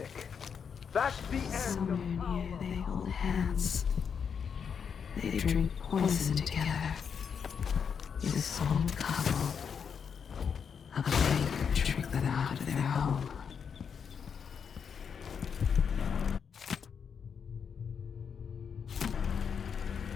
That's the end. Somewhere near they hold hands. They drink poison together. This soul couple. A plague tricked them out of their home.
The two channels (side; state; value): right; quieter; 6.8 dB